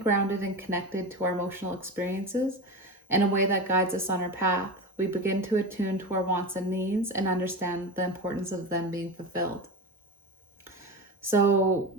and connected to our emotional experiences in a way that guides us on our path. We begin to attune to our wants and needs and understand the importance of them being fulfilled. So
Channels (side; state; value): both; normal; correlation 0.24